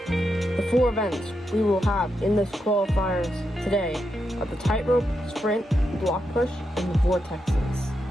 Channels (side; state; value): both; normal; correlation 0.84